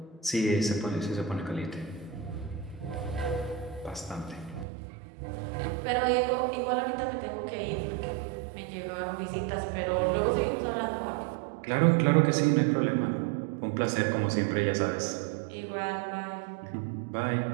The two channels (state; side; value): drops out; left; at 4.7 s